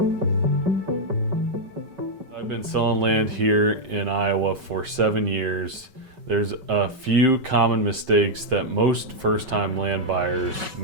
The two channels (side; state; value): left; late; 5.3 ms